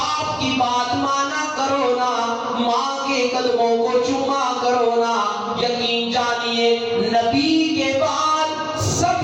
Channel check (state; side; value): identical; both; correlation 1.00